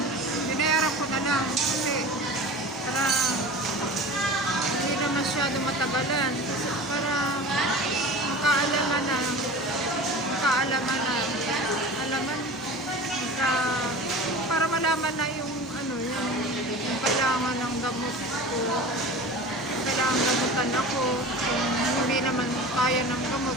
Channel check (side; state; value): both; normal; correlation 0.36